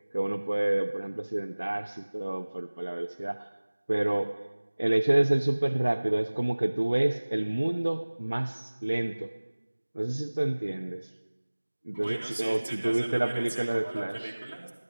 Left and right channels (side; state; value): both; inverted; correlation -1.00